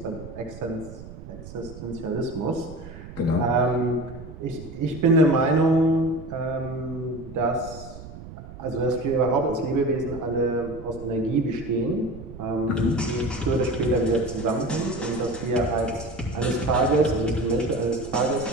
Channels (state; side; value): noise; right; rumble, 14 dB below the sound